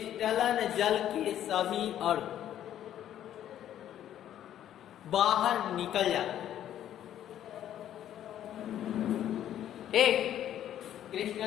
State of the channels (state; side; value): quieter; right; 11.2 dB